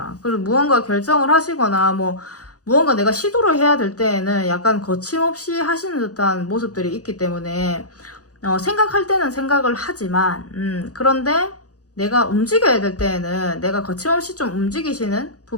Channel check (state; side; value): late; right; 0.67 ms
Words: 그래서 무언가 결정을 하시거나 뭐 무언가 내가 시도를 해야 될 때에는 약간 거침없이 하시는 듯한 모습들이 있기 때문에 생각할 때는 생각을 하지만 그런데 내가 움직여야 될 때에는 내가 거침없이 좀 움직이시는